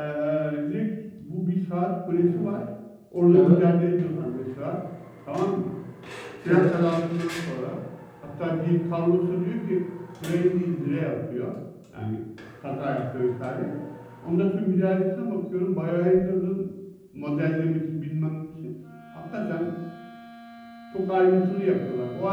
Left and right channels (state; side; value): identical; both; correlation 1.00